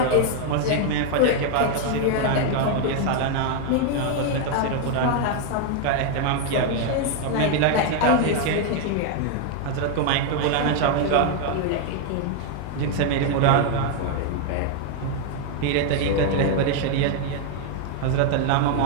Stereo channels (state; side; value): different; both; correlation 0.00